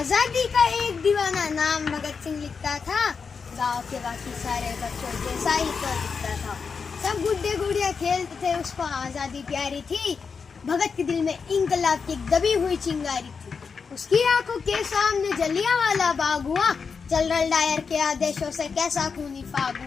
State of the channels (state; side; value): quieter; right; 5.5 dB